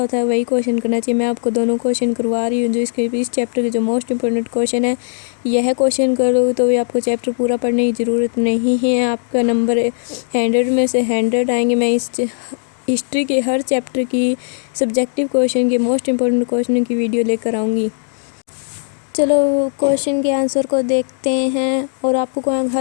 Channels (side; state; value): right; silent; digital silence